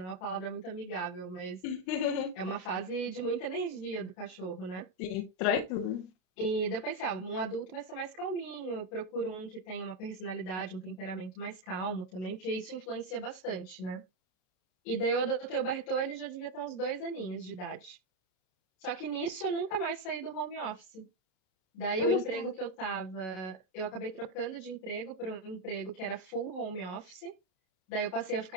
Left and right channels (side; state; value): right; late; 32 ms